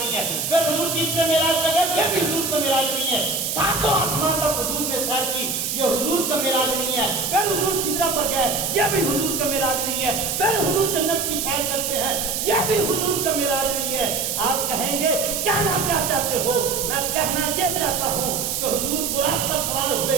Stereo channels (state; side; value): noise; right; hiss, 1 dB below the sound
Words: है। फिर हुजूर तीसरे मेराज पर गए, ये भी हुजूर का मेराज नहीं है। सातों आसमान तक हुजूर ने सैर की, ये हुजूर का मेराज नहीं है। फिर हुजूर सिदरा पर गए, ये भी हुजूर का मेराज नहीं है। फिर हुजूर जन्नत की सैर करते हैं, ये भी हुजूर का मेराज नहीं है। आप कहेंगे कहना क्या चाहते हो? मैं कहना ये चाहता हूँ कि हुजूर बुराक पर सवार हुए,